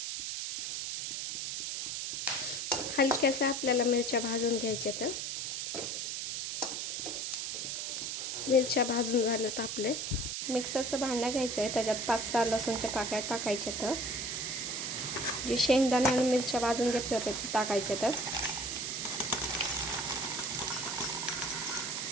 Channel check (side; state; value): right; noise; hiss, 3 dB below the sound